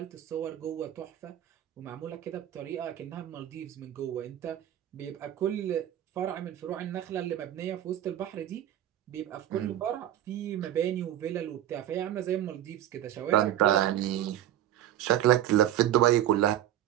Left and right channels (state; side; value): quieter; left; 12.1 dB